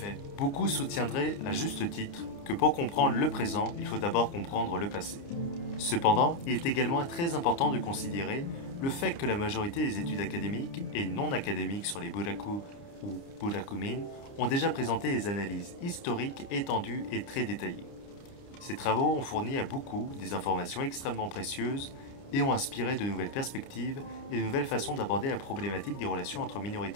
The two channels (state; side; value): late; right; 29 ms